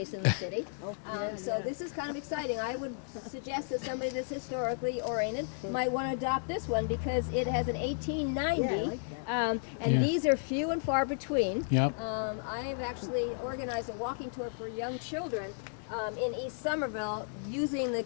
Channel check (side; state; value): right; silent; digital silence